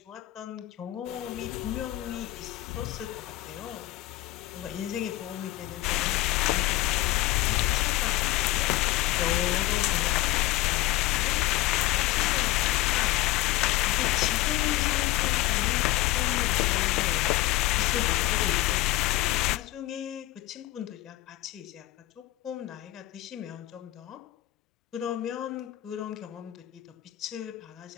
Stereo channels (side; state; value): right; quieter; 16.9 dB